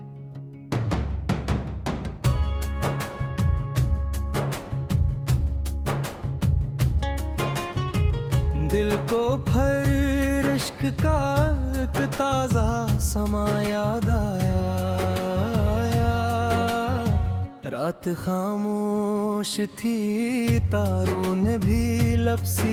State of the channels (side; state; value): both; identical; correlation 1.00